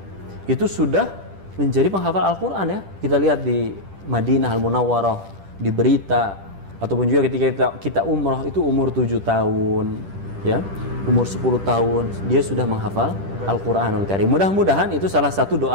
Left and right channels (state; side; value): late; left; 10 ms